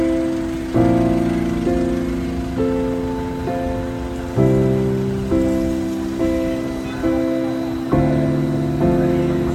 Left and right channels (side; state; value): both; identical; correlation 1.00